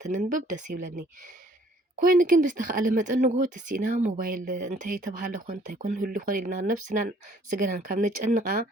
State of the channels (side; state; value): both; normal; correlation 0.60